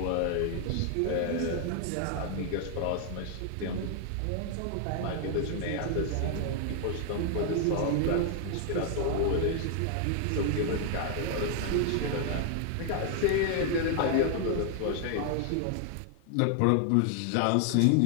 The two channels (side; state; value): both; different; correlation 0.00